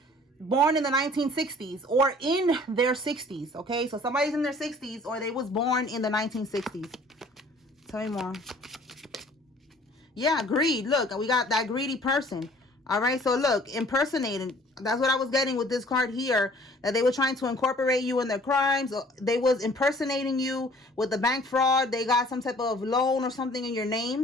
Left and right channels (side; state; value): both; normal; correlation 0.53